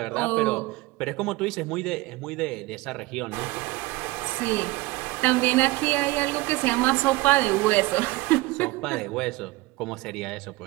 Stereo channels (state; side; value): quieter; left; 20.9 dB